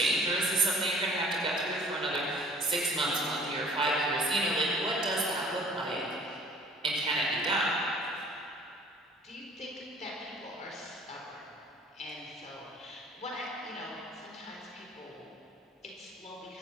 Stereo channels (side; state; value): both; normal; correlation 0.52